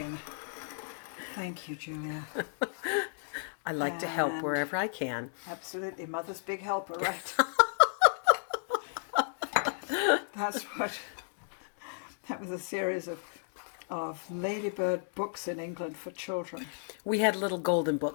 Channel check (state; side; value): silent; right; digital silence